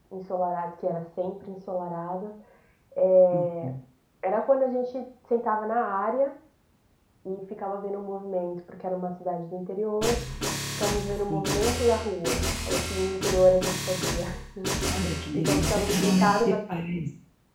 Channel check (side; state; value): both; identical; correlation 1.00